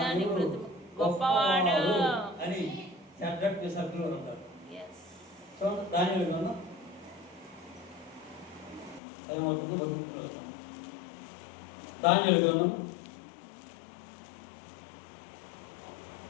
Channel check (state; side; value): drops out; right; at 9.0 s